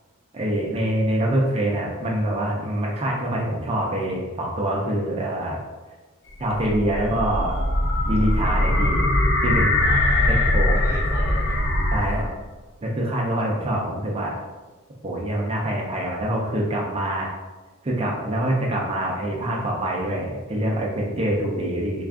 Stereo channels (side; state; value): both; normal; correlation 0.58